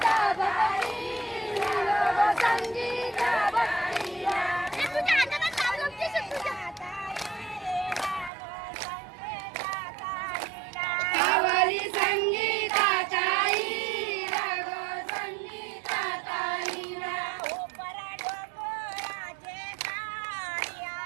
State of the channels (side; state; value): left; drops out; at 8.3 s